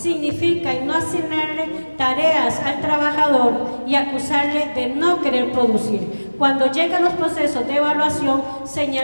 no asignarle tareas al trabajador y acusarle de no querer producir. Cuando llegan los procesos de evaluación,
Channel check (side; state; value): both; inverted; correlation -1.00